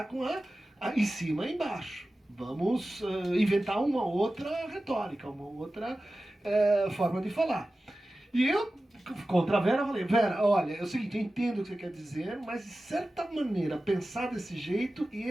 com a em cima e embaixo. Vamos inventar uma outra retórica, uma outra forma de falar. E eu, contra a Vera, falei, Vera, olha, é o seguinte, eu entendo o que você quer dizer, mas de certa maneira, pensar desse jeito e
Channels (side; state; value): both; normal; correlation 0.95